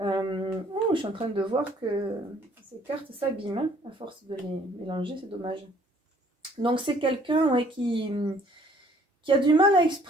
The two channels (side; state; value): both; normal; correlation 0.59